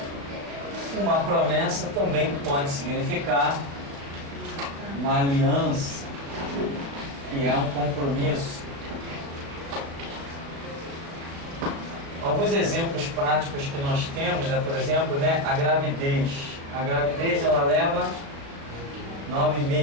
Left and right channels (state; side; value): late; left; 36 ms